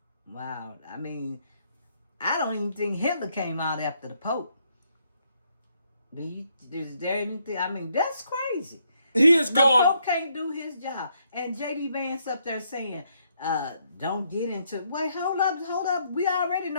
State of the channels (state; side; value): inverted; both; correlation -0.73